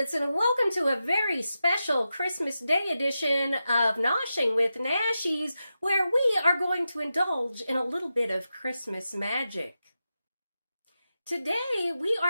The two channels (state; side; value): inverted; both; correlation -0.90